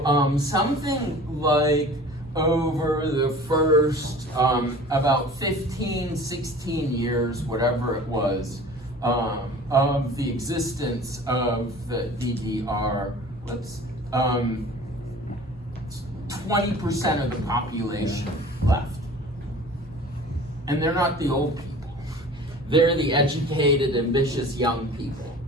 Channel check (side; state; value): both; normal; correlation 0.43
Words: something like over the first about 15, 16 years, whatever it was, of the existence of the DDR, 20% of the population left. And they're not the old people. They're the educated, ambitious young people.